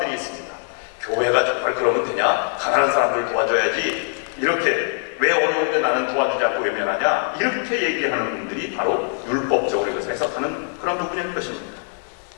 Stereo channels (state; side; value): silent; right; digital silence